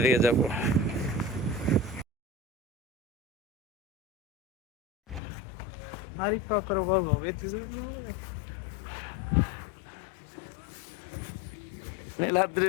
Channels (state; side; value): drops out; right; at 5.2 s